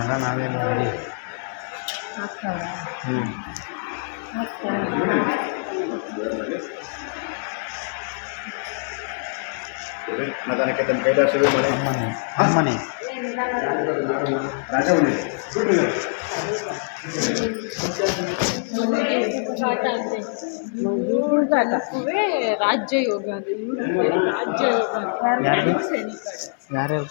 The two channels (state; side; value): silent; right; digital silence